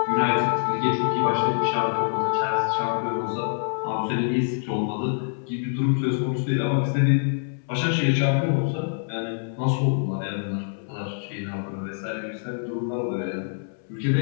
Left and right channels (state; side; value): silent; right; 62 dB below the other